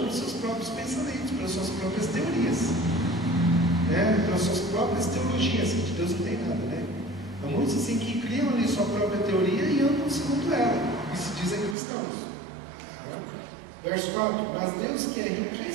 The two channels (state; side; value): drops out; left; at 11.8 s